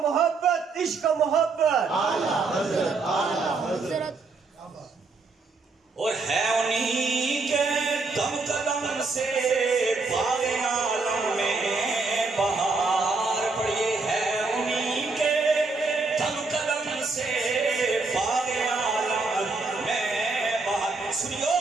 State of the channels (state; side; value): quieter; left; 3.9 dB